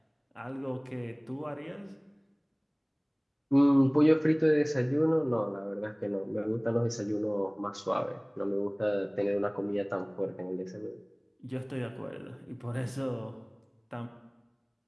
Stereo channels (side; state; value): both; identical; correlation 1.00